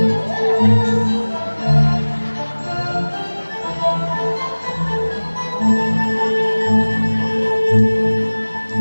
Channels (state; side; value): inverted; both; correlation -1.00